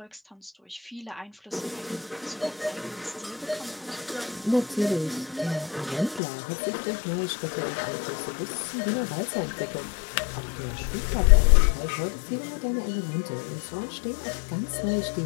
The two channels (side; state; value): right; drops out; at 6.2 s